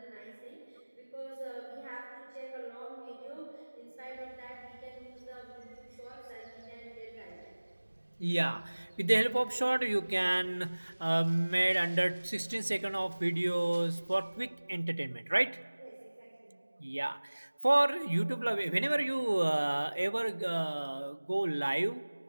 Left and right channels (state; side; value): inverted; both; correlation -1.00